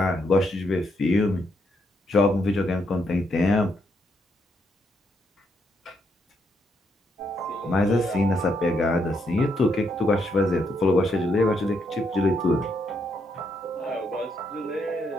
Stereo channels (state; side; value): normal; both; correlation 0.76